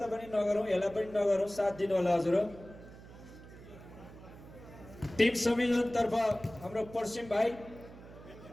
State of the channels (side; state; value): right; noise; hum, 18 dB below the sound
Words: पनि नगरौँ, यसलाई पनि नगरौँ, साथ दिनु होला हजुर। टिम संयोजन तर्फ हाम्रो पश्चिम भाइ,